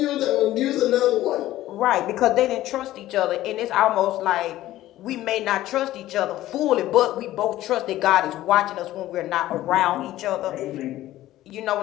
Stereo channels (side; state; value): right; quieter; 14.9 dB